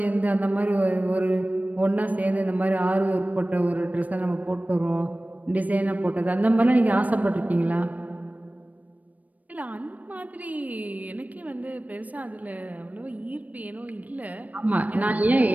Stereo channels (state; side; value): late; left; 0.074 ms